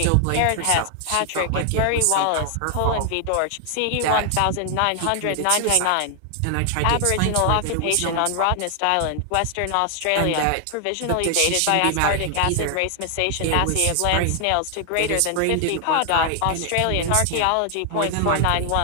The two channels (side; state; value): both; different; correlation 0.00